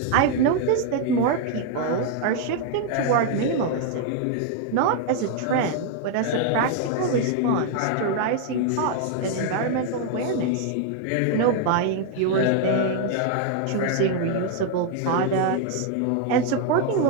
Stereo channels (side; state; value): both; different; correlation 0.00